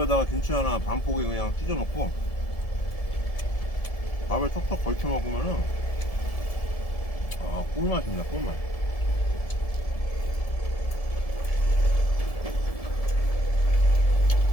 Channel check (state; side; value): late; right; 1.7 ms